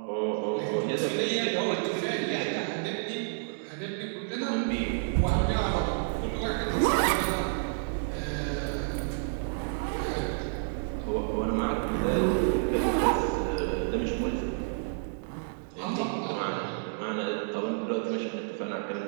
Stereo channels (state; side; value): silent; left; digital silence